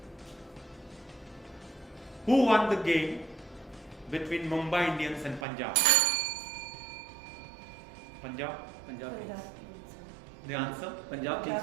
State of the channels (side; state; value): left; drops out; at 5.5 s